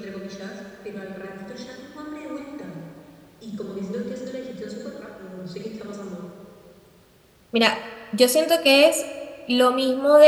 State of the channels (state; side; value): identical; both; correlation 1.00